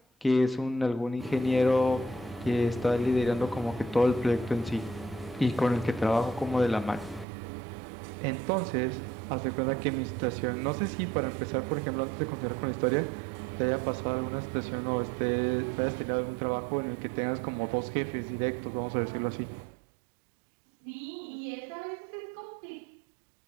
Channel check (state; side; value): drops out; left; at 7.2 s